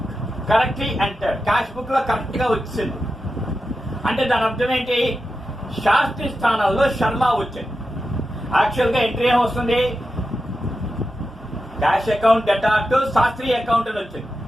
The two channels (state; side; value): normal; both; correlation 0.90